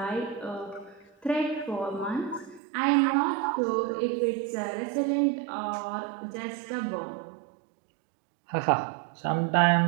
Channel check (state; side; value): drops out; left; at 2.6 s